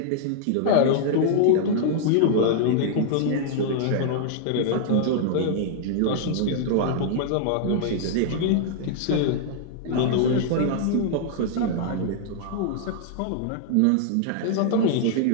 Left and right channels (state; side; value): different; both; correlation -0.01